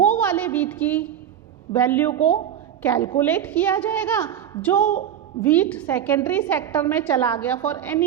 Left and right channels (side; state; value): left; quieter; 9.9 dB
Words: वाले वीट की वैल्यू को कैलकुलेट किया जाएगा। जो वीट सेकेंडरी सेक्टर में चला गया फॉर